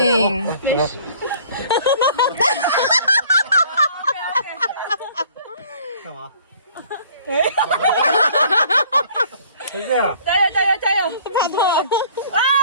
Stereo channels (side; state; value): both; inverted; correlation -0.54